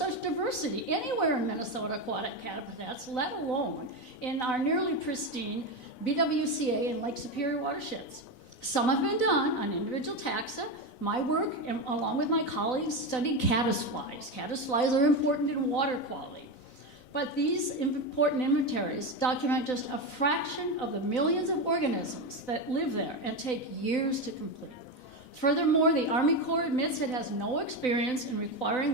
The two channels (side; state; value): right; late; 4.0 ms